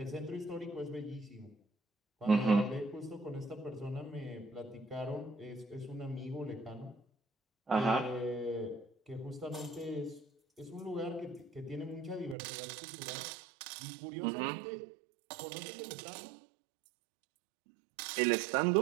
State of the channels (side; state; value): left; drops out; at 12.4 s